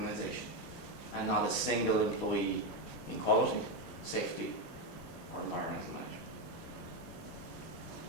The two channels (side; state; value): right; late; 10 ms